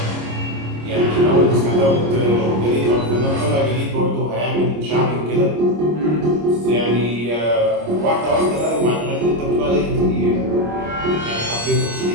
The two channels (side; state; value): left; late; 26 ms